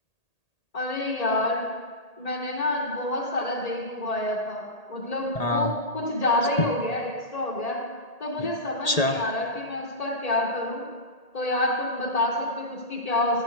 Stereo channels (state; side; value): late; right; 1.8 ms